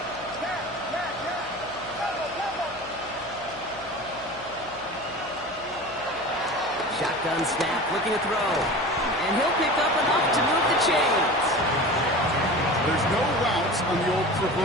Shotgun snap, looking to throw. And he'll pick up enough to move the chains. There's no routes on the old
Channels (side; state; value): left; noise; hum, 21 dB below the sound